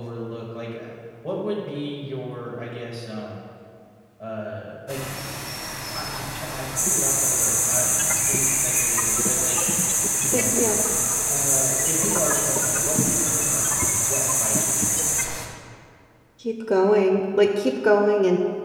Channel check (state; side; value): identical; both; correlation 1.00